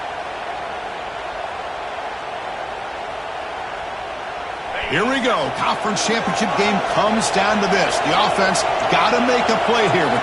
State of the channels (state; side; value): identical; both; correlation 1.00